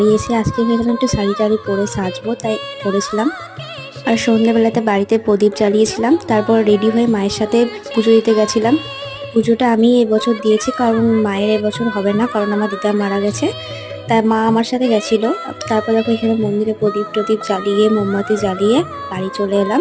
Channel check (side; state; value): both; identical; correlation 1.00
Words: এসে আজকে ভেবেছিলাম একটু শাড়ি টাড়ি পরে সাজবো, তাই পরেছিলাম। আর সন্ধ্যাবেলাতে বাড়িতে প্রদীপ জ্বালিয়েছিলাম। তারপর রেডি হয়ে মায়ের সাথে পুজো দিতে গেছিলাম। পুজোটা আমি এবছর দিয়েছি, কারণ মায়ের এবছর হবে না, কারণ আমার দিদা মারা গেছে। তাই মা আমার সাথে গেছিলো। তারপর দেখো এখানে মন্দিরে প্রদীপ টদীপ জ্বালিয়ে মোমবাতি জ্বালিয়ে বাড়ি চলে এলাম।